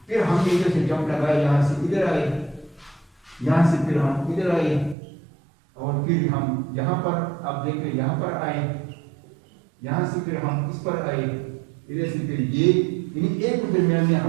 फिर हमने इधर से जंप लगाया, यहाँ से इधर आए, यहाँ से फिर हम इधर आए, और फिर हम यहाँ पर आप देखें यहाँ पर आए, यहाँ से फिर हम इस पर आए, इधर से फिर ये, यानी एक के दरमियान में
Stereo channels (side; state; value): left; drops out; at 5.0 s